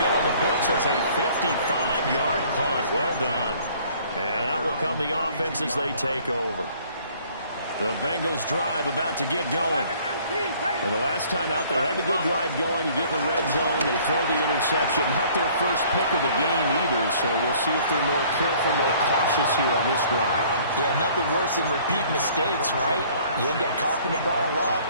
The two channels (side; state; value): both; inverted; correlation -0.56